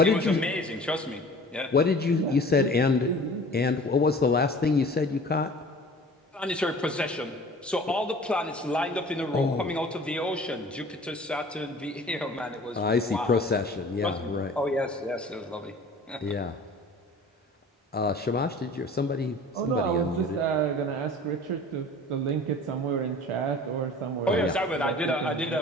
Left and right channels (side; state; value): both; normal; correlation 0.44